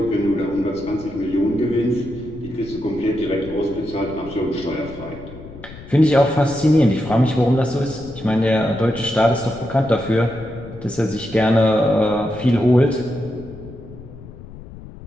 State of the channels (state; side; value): noise; left; rumble, 16 dB below the sound